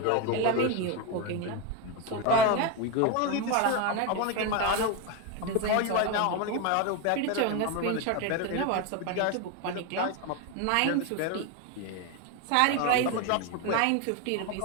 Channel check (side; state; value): both; different; correlation 0.02